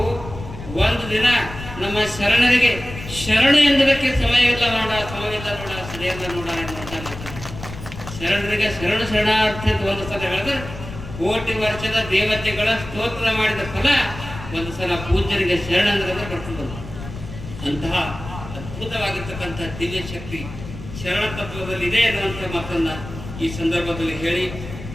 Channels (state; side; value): noise; left; rumble, 12 dB below the sound